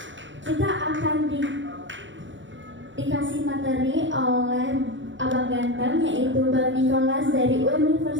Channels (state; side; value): late; left; 0.55 ms